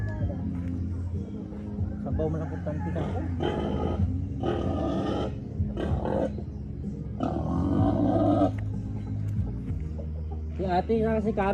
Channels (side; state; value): both; identical; correlation 1.00